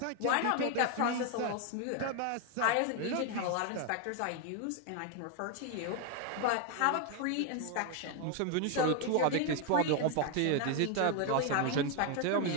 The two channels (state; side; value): different; both; correlation 0.01